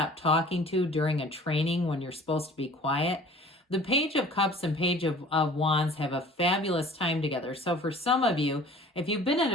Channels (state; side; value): normal; both; correlation 0.47